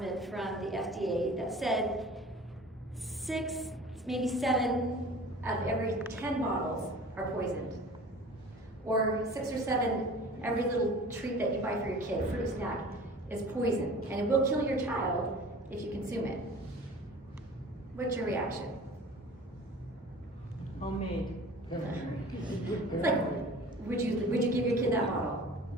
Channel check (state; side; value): normal; both; correlation 0.43